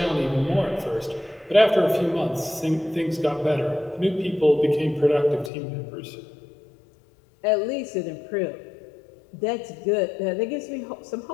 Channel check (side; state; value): right; drops out; at 5.5 s